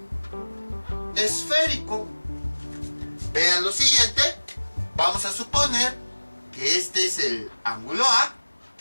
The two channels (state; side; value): inverted; both; correlation -1.00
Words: esférico. Vean lo siguiente. Vamos a suponer que este es el ángulo A,